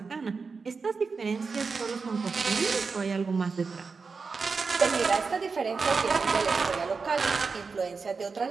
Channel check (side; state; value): left; quieter; 4.8 dB